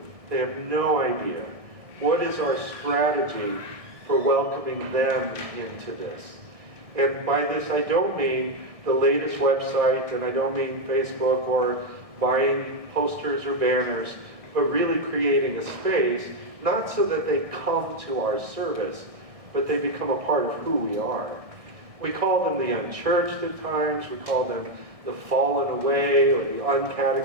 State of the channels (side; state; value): left; late; 1.6 ms